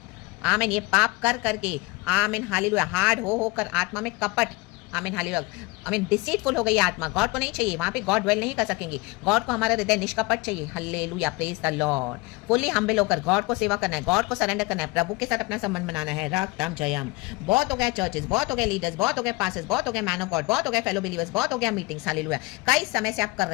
आमीन, ये पाप कर करके, आमीन, हालेलुया, हार्ड हो कर आत्मा में कपट, आमीन, हालेलुया, आमीन, डिसीटफुल हो गई आत्मा, गॉड को नहीं चाहिए, वहां पे गॉड ड्वेल नहीं कर सकेंगे। गॉड को हमारा हृदय निष्कपट चाहिए। Hallelujah, praise the Lord. Fully humble होकर गॉड को सेवा करना है, गॉड को सरेंडर करना है, प्रभु के साथ अपना संबंध बनाना है। रक्तम जयम। बहुत हो गया चर्चेस, बहुत हो गए लीडर्स, बहुत हो गए पास्टर्स, बहुत हो गए मैन ऑफ गॉड, बहुत हो गए फेलो बिलीवर्स, बहुत हो गया मीटिंग्स। हालेलुया, कई समय से आप कर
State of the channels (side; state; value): right; quieter; 23.2 dB